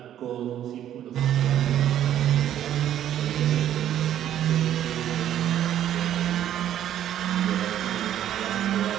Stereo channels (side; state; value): left; quieter; 11.1 dB